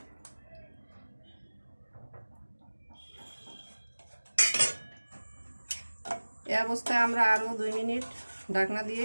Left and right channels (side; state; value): both; inverted; correlation -1.00